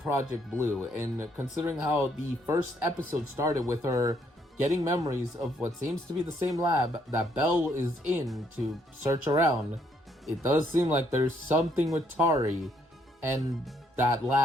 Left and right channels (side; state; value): both; normal; correlation 0.70